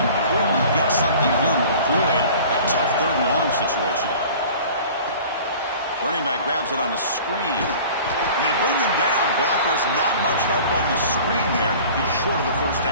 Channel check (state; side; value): inverted; both; correlation -0.44